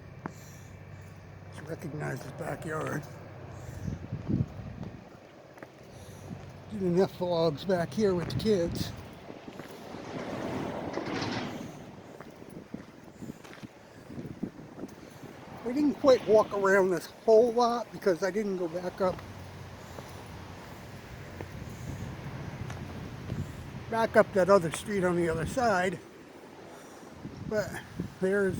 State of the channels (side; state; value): both; identical; correlation 1.00